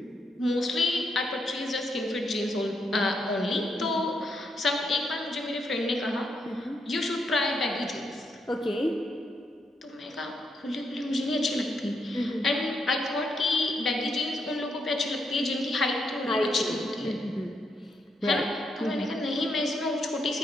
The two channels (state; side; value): normal; both; correlation 0.79